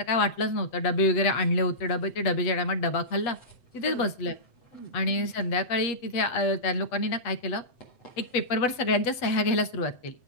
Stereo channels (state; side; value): late; right; 8.0 ms